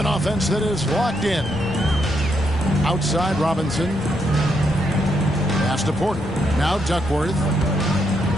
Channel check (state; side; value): normal; both; correlation 0.78